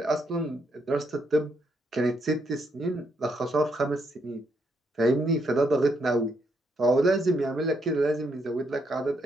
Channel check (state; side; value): normal; both; correlation 0.76